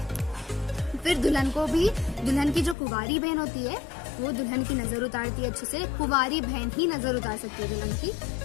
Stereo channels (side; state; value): right; drops out; at 2.8 s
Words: फिर दुल्हन को भी, दुल्हन की जो कुंवारी बहन होती है वो दुल्हन की नजर उतारती है अच्छे से। कुंवारी बहन ही नजर उतार सकती है